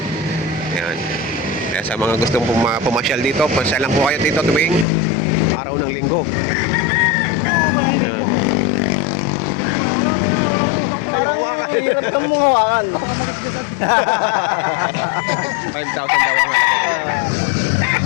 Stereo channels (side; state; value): right; drops out; at 4.9 s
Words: Ayan. Kaya sa mga gustong pumasyal dito, pasyal lang po kayo dito tuwing araw ng linggo. Ayan. Ayaw hawakan. Hirap kang mong hawakan. 5,000 daw ang halaga.